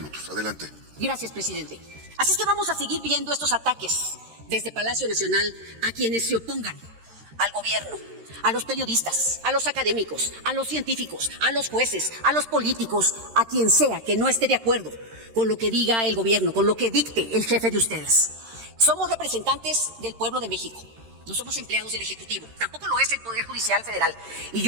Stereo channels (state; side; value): late; left; 13 ms